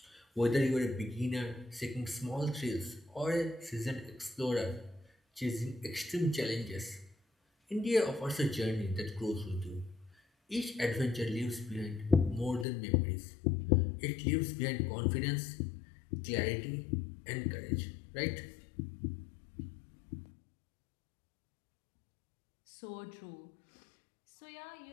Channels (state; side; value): drops out; right; at 12.7 s